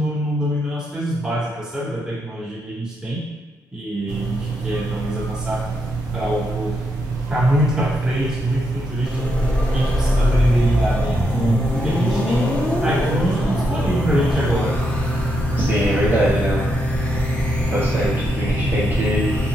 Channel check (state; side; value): normal; both; correlation 0.80